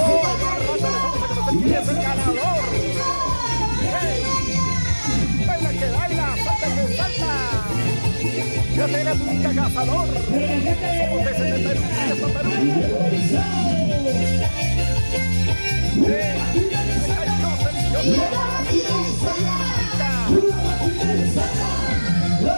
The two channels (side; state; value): both; inverted; correlation -1.00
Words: ¿Quién es el ganador? Baila que baila, salta que salta. Ya se viene un cazador. Somos desde Perú, desde